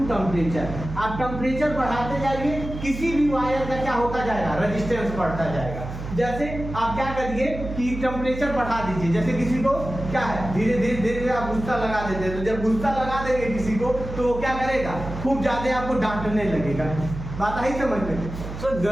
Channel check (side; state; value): right; noise; hum, 9 dB below the sound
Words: temperature. आप टेम्परेचर बढ़ाते जाइए, किसी भी वायर का क्या होता जाएगा, रेजिस्टेंस बढ़ता जाएगा। जैसे आप क्या करिए कि टेम्परेचर बढ़ा दीजिए, जैसे किसी को क्या है, धीरे धीरे धीरे आप गुस्सा लगा देते हैं, तो जब गुस्सा लगा देंगे किसी को तो वो क्या करेगा, खूब ज्यादा आपको डांटने लगेगा। बात आई समझ में। सर